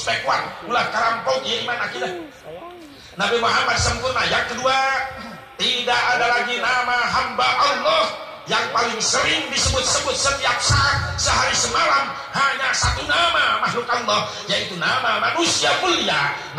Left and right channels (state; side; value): identical; both; correlation 1.00